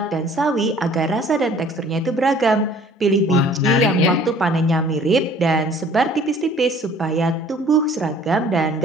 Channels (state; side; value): normal; both; correlation 0.53